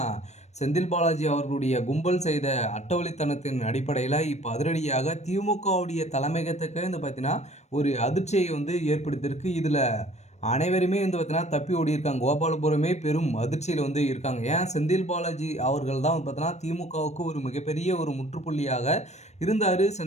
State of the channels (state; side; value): late; right; 0.32 ms